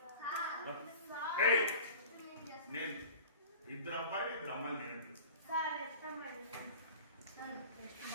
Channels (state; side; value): inverted; both; correlation -0.39